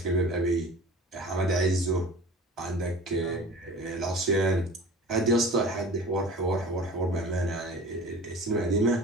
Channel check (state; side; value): normal; both; correlation 0.40